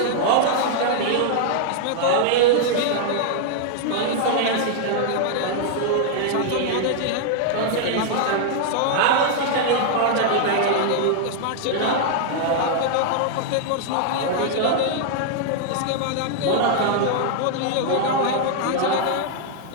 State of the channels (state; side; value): different; both; correlation -0.01